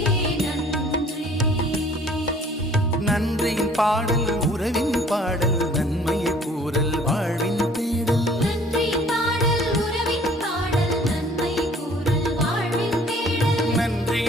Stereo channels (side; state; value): both; normal; correlation 0.55